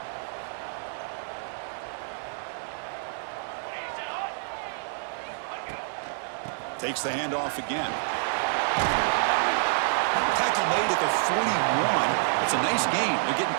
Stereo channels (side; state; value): left; silent; digital silence